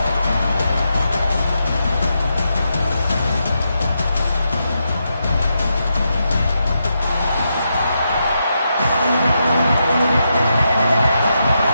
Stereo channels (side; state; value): both; inverted; correlation -0.84